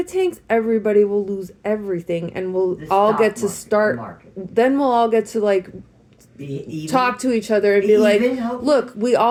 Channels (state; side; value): identical; both; correlation 1.00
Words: tanks, everybody will lose everything, and we'll all get to start. Then we'll all get to like talk to each other and be like, look, we